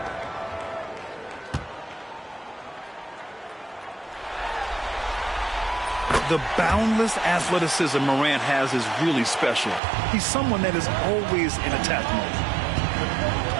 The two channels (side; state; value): left; drops out; at 9.8 s